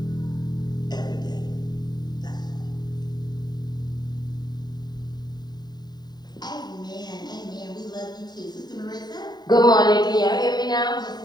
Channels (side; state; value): right; late; 0.20 ms